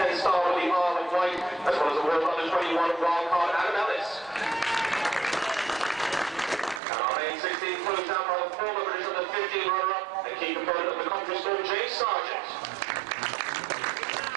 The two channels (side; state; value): left; drops out; at 6.8 s